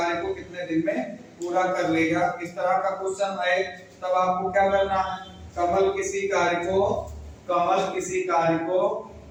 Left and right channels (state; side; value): identical; both; correlation 1.00